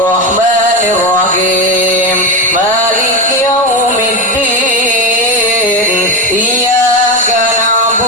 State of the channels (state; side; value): normal; both; correlation 0.15